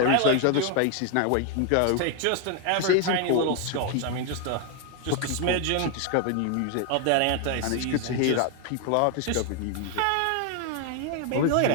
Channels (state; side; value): different; both; correlation 0.01